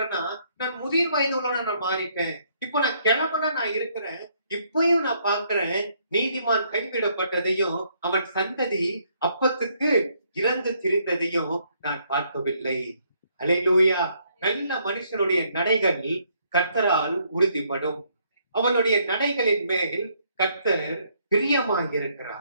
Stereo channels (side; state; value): both; inverted; correlation -0.70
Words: நான் முதிர் வயது உள்ளவனா நான் மாறிட்டேன். இப்போ நான் கிழவனா நான் இருக்கிறேன். இப்பயும் நான் பார்க்கிறேன், நீதிமான் கைவிடப்பட்டதையும் அவன் சந்ததி அப்பத்துக்கு இறந்து திரிந்ததையும் நான் பார்க்கவில்லை. அல்லேலூயா. நல்ல மனுஷனுடைய நடைகள் கர்த்தரால் உறுதிப்படும். அவனுடைய நடைகளின் மேல் கர்த்தர்